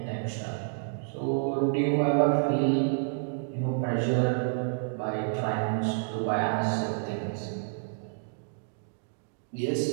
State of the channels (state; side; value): silent; left; digital silence